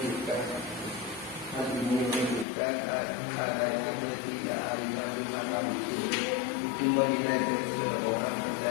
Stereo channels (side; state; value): right; drops out; at 2.5 s